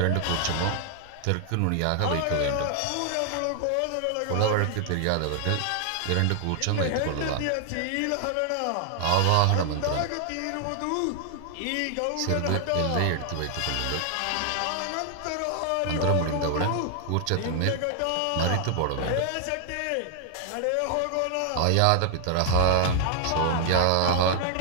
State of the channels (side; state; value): both; different; correlation 0.00